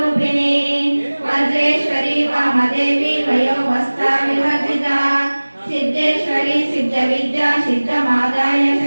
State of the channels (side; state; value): both; inverted; correlation -1.00